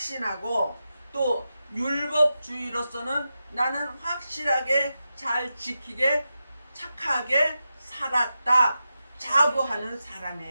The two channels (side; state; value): both; inverted; correlation -0.90